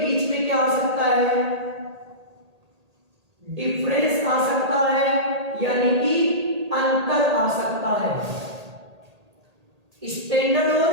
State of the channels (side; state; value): left; late; 1.8 ms